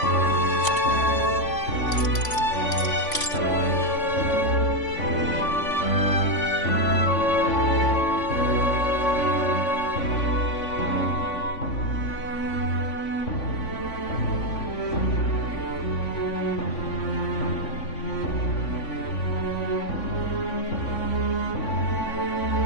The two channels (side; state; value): right; late; 3.5 ms